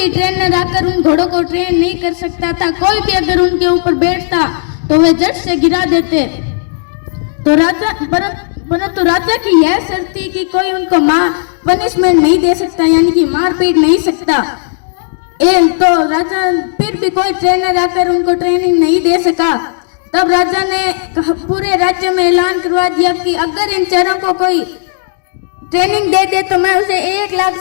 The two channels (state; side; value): silent; right; digital silence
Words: ट्रेनर आकर उन घोड़ों को ट्रेन नहीं कर सकता था। कोई भी अगर उनके ऊपर बैठता तो वे झट से गिरा देते। तो परंतु राजा की यह शर्त थी कि कोई उनको पनिशमेंट नहीं दे सकता, यानी कि मार पीट नहीं सकता। तो राजा फिर भी कोई ट्रेनर आकर उनको ट्रेनिंग नहीं दे सका। तब राजा ने पूरे राज्य में ऐलान करवा दिया कि अगर इन चारों को कोई ट्रेनिंग दे दे तो मैं उसे 1 लाख